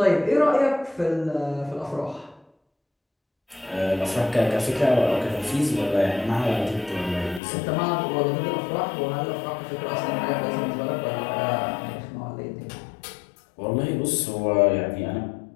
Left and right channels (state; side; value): drops out; right; at 7.4 s